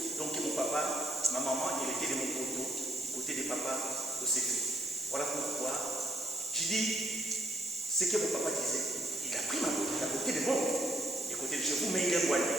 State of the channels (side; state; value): both; normal; correlation 0.71